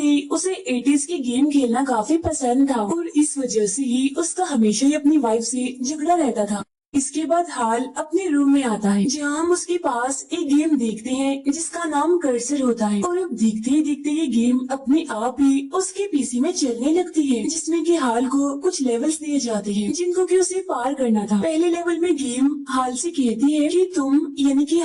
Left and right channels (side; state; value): both; identical; correlation 1.00